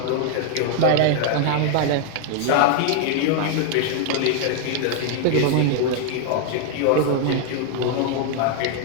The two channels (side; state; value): both; different; correlation 0.00